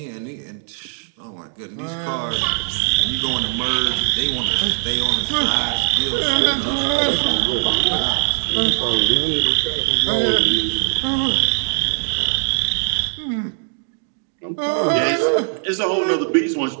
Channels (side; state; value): left; silent; digital silence